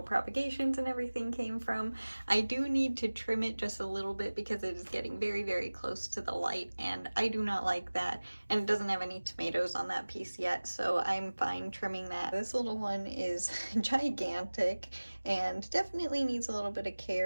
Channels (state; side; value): inverted; both; correlation -1.00